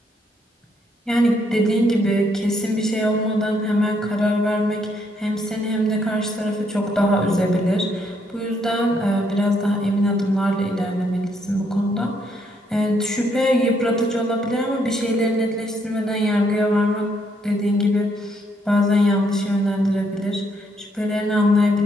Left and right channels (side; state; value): both; normal; correlation 0.72